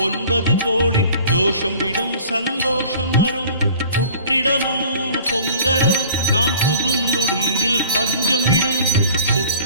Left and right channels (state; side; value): inverted; both; correlation -0.47